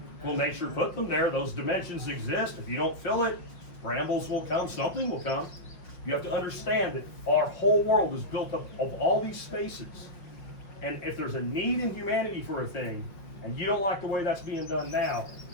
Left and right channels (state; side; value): late; right; 5.6 ms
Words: Well, nature put them there. Those dimensions exist. If you don't fill it, brambles will come, something will come. You have to understand that our whole world is built up of all these spaces. And if there's a need in humanity for a thing, and you don't like the way that's being done now,